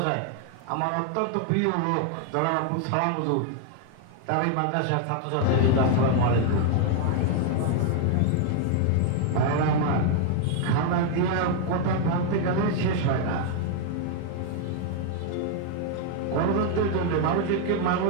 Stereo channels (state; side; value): different; both; correlation 0.00